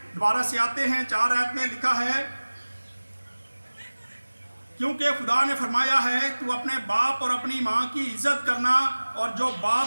दोबारा से आते हैं, 4 आयत में लिखा है, क्योंकि खुदा ने फरमाया है तू अपने बाप और अपनी माँ की इज्जत करना, और जो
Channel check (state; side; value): inverted; both; correlation -1.00